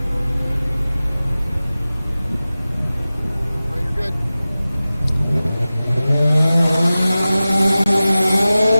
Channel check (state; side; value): inverted; both; correlation -0.96